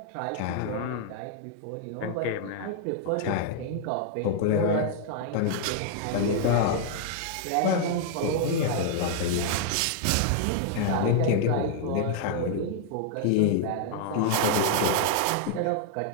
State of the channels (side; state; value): both; different; correlation 0.00